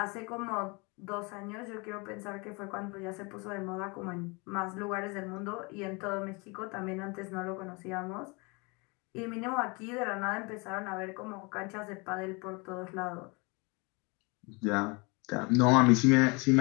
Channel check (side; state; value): right; quieter; 28.8 dB